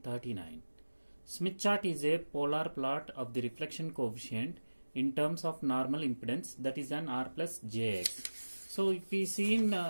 Smith chart is a polar plot of the reflection coefficient in terms of normal impedance, that is an R plus Jx. So if we see in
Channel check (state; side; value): inverted; both; correlation -1.00